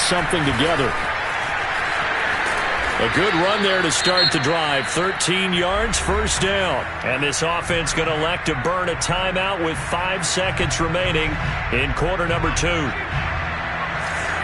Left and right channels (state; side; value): identical; both; correlation 1.00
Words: something together. A good run there to start the drive. 13 yards, first down. And this offense going to elect to burn a timeout with 5 seconds remaining in quarter number 2.